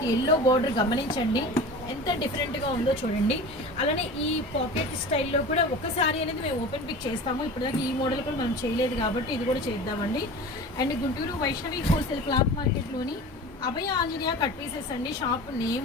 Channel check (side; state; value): both; normal; correlation 0.35